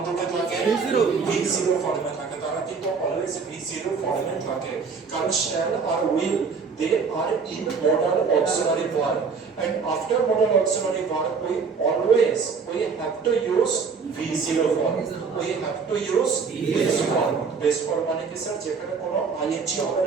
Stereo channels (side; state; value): left; quieter; 5.3 dB